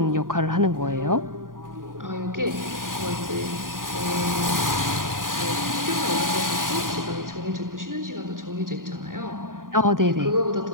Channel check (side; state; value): left; late; 0.90 ms